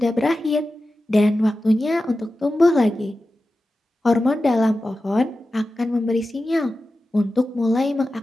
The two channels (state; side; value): normal; both; correlation 0.93